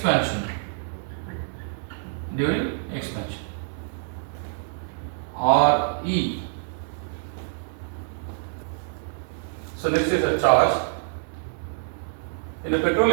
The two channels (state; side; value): silent; left; 61 dB below the other